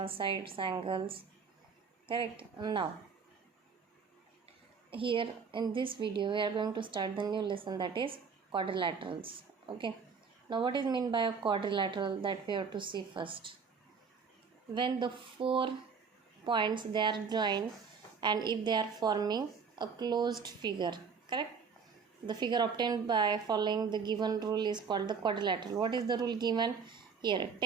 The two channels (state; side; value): quieter; left; 5.8 dB